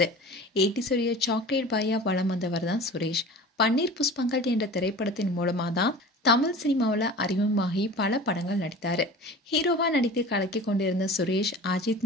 80ஸ் உடைய சாக்லேட் பாயா வலம் வந்தவர் தான் சுரேஷ். பன்னீர் புஷ்பங்கள் என்ற திரைப்படத்தின் மூலமா தான் தமிழ் சினிமாவில் அறிமுகமாகி பல படங்கள் நடித்தாரு. ஹீரோவா நடித்து கலக்கி கொண்டிருந்த சுரேஷ்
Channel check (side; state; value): both; normal; correlation 0.38